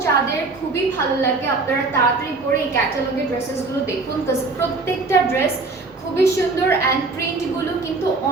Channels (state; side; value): quieter; left; 3.7 dB